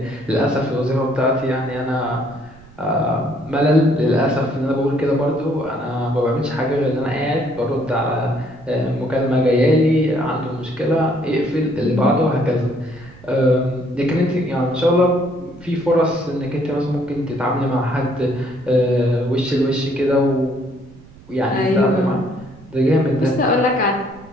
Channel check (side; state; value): right; noise; rumble, 22 dB below the sound